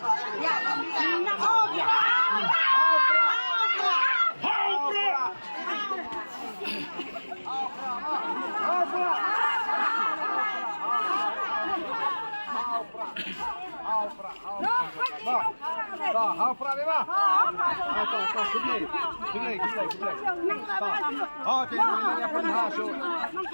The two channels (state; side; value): inverted; both; correlation -1.00